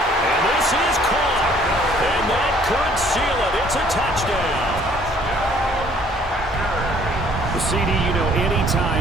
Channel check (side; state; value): both; normal; correlation 0.59